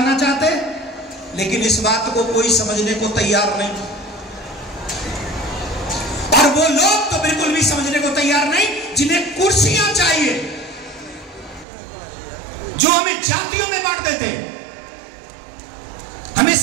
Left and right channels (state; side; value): drops out; left; at 11.7 s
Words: चाहते? लेकिन इस बात को कोई समझने को तैयार नहीं, और वो लोग तो बिल्कुल भी समझने को तैयार नहीं जिन्हें कुर्सियां चाहिए, जो हमें जातियों में बांट देते, हमें